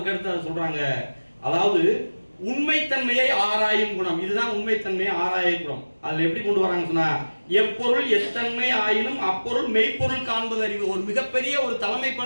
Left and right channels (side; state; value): both; inverted; correlation -1.00